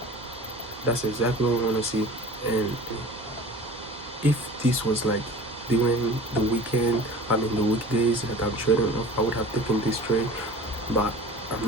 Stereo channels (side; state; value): both; normal; correlation 0.40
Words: That's exactly what we want to see. And if this was like during the weekend, I mean the weekdays that I'm trading off, I would have taken this trade, but I'm